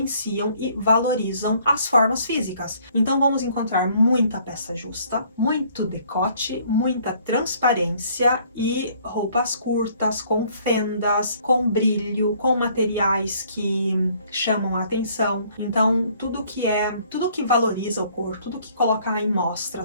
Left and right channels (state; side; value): inverted; both; correlation -0.61